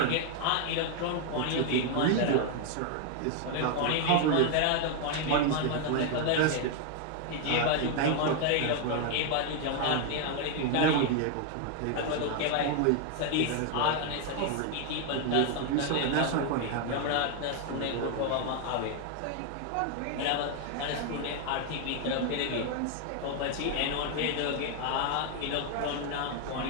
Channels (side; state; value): both; different; correlation 0.01